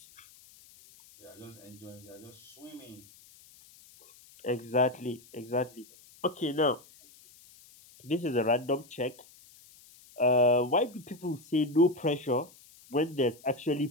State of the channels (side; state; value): left; noise; hiss, 24 dB below the sound